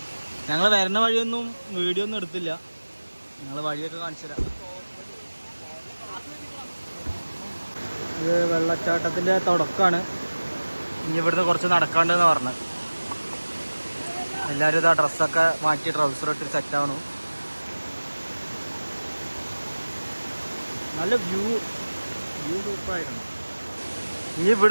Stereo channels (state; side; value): inverted; both; correlation -1.00